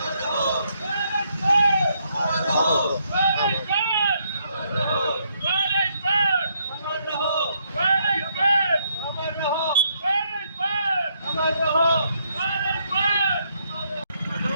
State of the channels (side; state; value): both; inverted; correlation -0.74